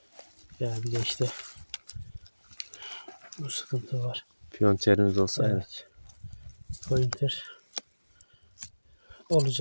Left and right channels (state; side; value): inverted; both; correlation -1.00